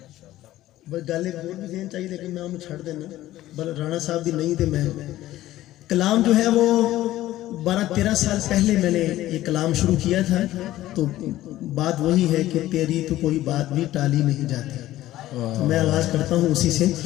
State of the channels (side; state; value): right; quieter; 14.9 dB